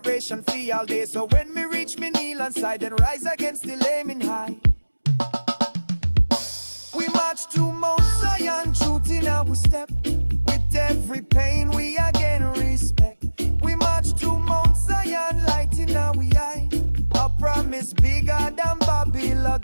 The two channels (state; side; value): inverted; both; correlation -1.00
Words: for all day. So when me reach me kneel and side and rise against the aiming high. We march to Mount Zion, truth in our step. With every pain we again respect. We march to Mount Zion, light in our eye. A promise bigger than Babylon